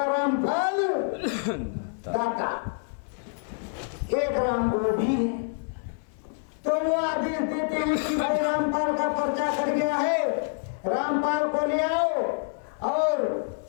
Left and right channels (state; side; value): silent; right; 60 dB below the other